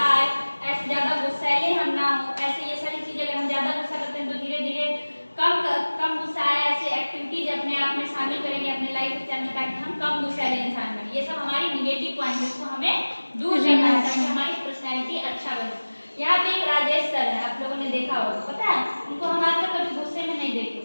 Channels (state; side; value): inverted; both; correlation -1.00